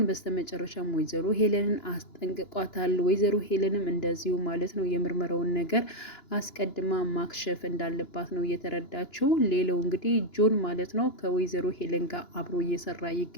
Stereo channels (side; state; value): right; late; 2.9 ms